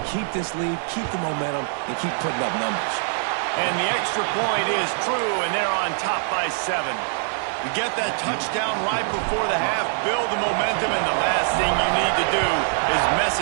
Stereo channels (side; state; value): left; silent; 63 dB below the other